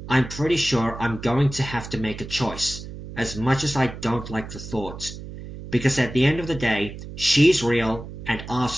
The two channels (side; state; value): right; noise; hum, 11 dB below the sound